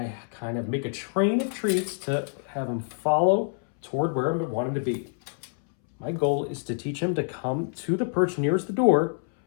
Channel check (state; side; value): silent; right; 61 dB below the other